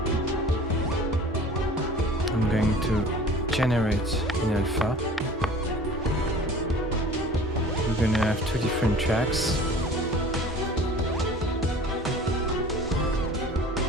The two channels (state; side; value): normal; both; correlation 0.44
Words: I'm going to generate in alpha. We're going to have 2 different tracks.